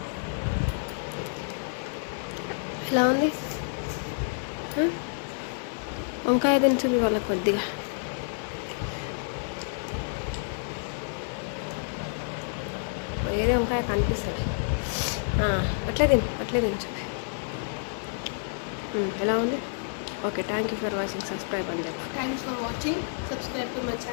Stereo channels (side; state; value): right; silent; 59 dB below the other